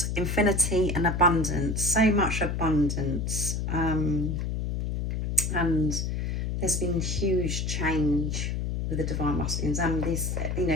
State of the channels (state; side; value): noise; left; hum, 2 dB below the sound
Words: infinity and abundance, so much abundance. And there's been huge change with the divine masculines, and this, you